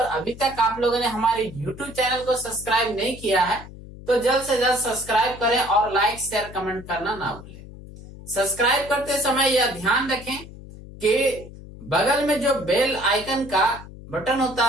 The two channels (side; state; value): left; noise; hum, 16 dB below the sound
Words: तक आप लोगों ने हमारे YouTube चैनल को सब्सक्राइब नहीं किया है तो जल्द से जल्द सब्सक्राइब करें और लाइक शेयर कमेंट करना ना भूलें। सब्सक्राइब करते समय यह ध्यान रखें कि बगल में जो बेल आइकन का बटन होता